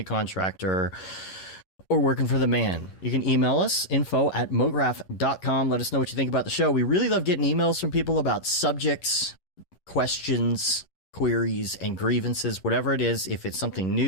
contractor, or working for the man. You can email us, info@mograph.com. Let us know what you think about the show. We really love getting emails from people about subjects, questions, queries, and grievances, whatever it is. If it's something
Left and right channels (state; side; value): late; right; 11 ms